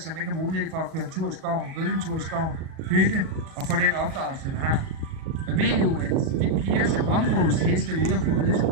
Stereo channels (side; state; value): left; late; 37 ms